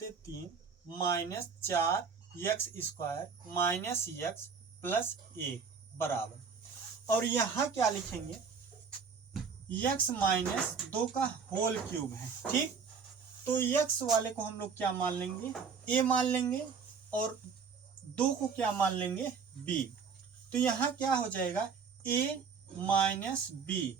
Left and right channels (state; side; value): quieter; left; 5.8 dB